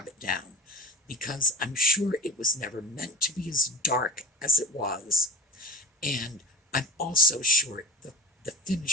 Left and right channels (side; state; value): both; normal; correlation 0.36